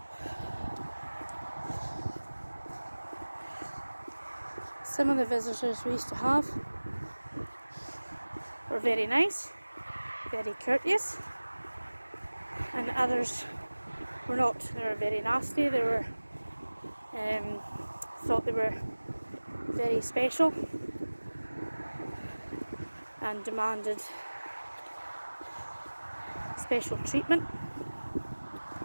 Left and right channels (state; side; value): inverted; both; correlation -1.00